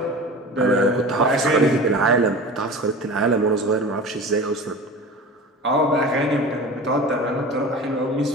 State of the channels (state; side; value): normal; both; correlation 0.35